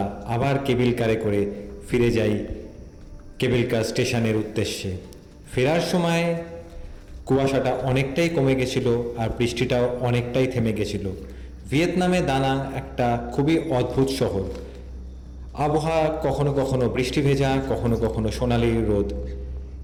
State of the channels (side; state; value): both; identical; correlation 1.00